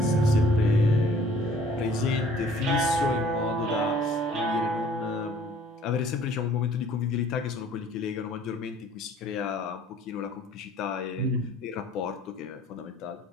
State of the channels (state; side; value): normal; both; correlation 0.55